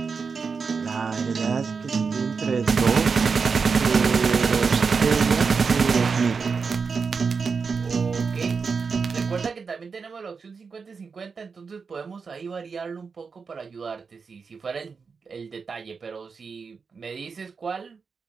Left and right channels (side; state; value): left; quieter; 5.3 dB